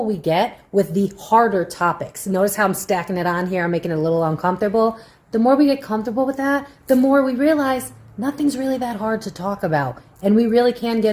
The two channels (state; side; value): identical; both; correlation 1.00